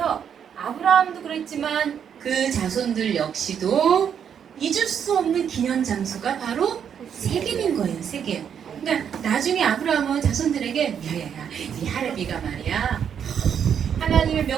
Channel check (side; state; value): left; quieter; 8.1 dB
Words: 아브라함도 그랬지만 그 자손들 역시도 잊을 수 없는 기념 장소가 바로 세겜인 거예요. 세겜. 그러니까 나중에 아브라함은 자손들에게 야야야 이 하레비가 말이야 하나님의